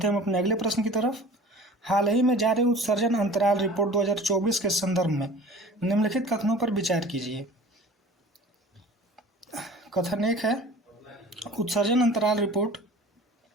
हम अपने अगले प्रश्न की तरफ। हाल ही में जारी उत्सर्जन अंतराल रिपोर्ट 2024 के संदर्भ में निम्नलिखित कथनों पर विचार कीजिए। कथन 1 है उत्सर्जन अंतराल रिपोर्ट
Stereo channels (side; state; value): both; normal; correlation 0.44